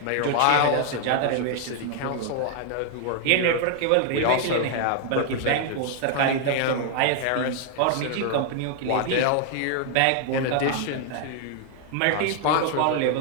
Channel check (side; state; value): both; different; correlation 0.00